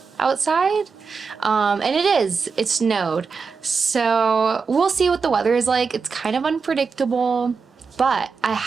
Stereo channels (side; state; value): left; quieter; 5.2 dB